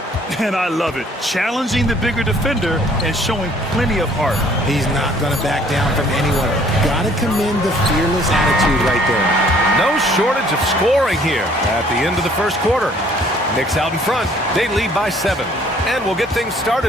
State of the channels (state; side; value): normal; both; correlation 0.59